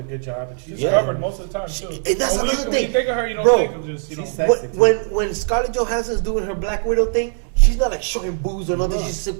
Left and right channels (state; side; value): silent; left; 65 dB below the other